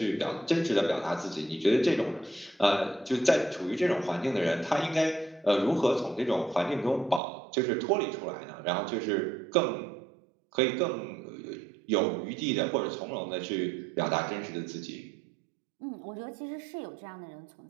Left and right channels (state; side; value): drops out; left; at 7.2 s